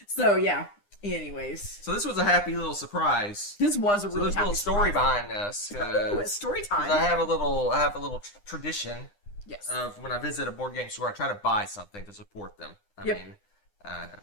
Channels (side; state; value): right; late; 9.8 ms